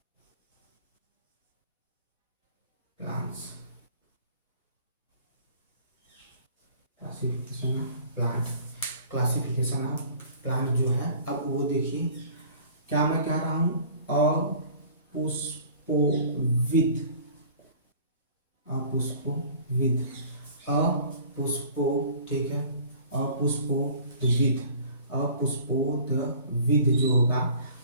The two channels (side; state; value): both; inverted; correlation -0.48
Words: plants, classification of plant, classification of plant जो है, अब वो देखिए क्या मैं कह रहा हूँ, अपुष्पोविद, अपुष्पोविद, अपुष्पो, ठीक है, अपुष्पोविद, अपुष्पोदविद जो होगा,